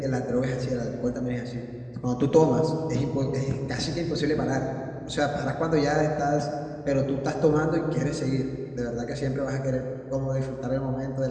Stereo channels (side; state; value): both; identical; correlation 1.00